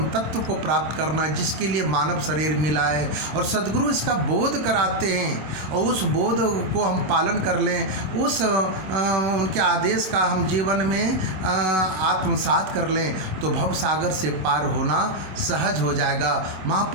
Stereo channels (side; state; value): left; late; 27 ms